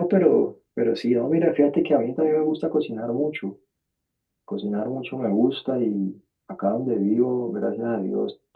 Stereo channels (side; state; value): both; identical; correlation 1.00